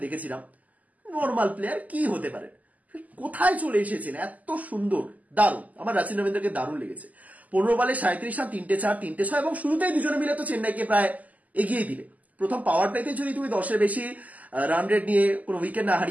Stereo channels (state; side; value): late; left; 0.077 ms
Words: দেখেছিলাম, নর্মাল প্লেয়ার কি হতে পারে, কোথায় চলে এসেছেন এত সুন্দর, দারুণ। আমার রাচিন রবীন্দ্রকে দারুণ লেগেছে। 15 বলে 37 রান, 3টে 4, 3টে 6, এবং শুরুতেই দুজনে মিলে তো চেন্নাইকে প্রায় এগিয়ে দিলে। প্রথম পাওয়ার প্লেতে যদি তুমি 10-এর বেশি রান রেট নিয়ে কোনো উইকেট না